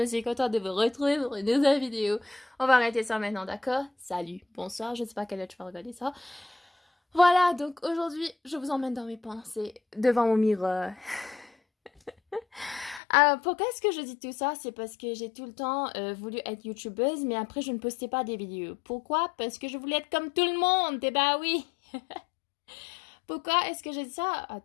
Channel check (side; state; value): right; drops out; at 13.0 s